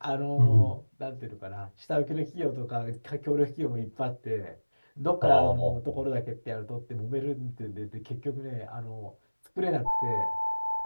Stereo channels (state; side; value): inverted; both; correlation -1.00